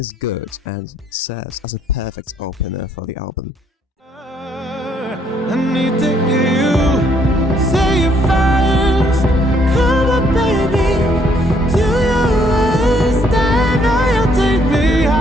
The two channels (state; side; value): normal; both; correlation 0.68